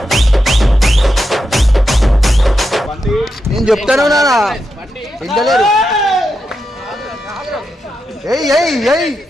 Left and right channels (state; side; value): normal; both; correlation 0.86